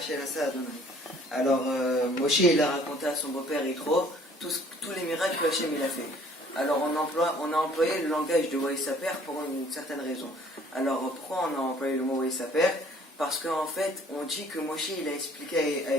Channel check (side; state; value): both; normal; correlation 0.56